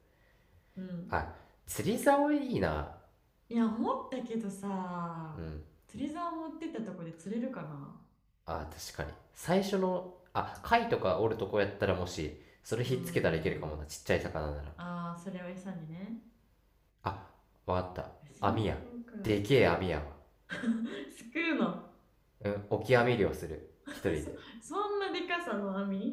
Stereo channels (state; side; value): identical; both; correlation 1.00